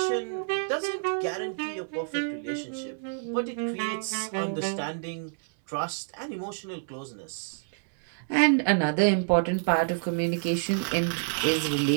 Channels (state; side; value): silent; left; digital silence